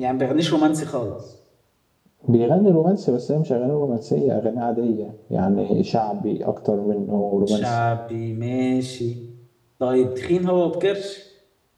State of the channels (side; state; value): both; identical; correlation 1.00